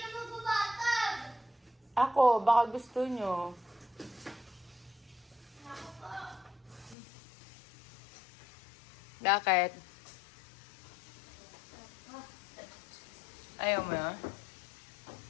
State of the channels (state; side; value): drops out; right; at 7.0 s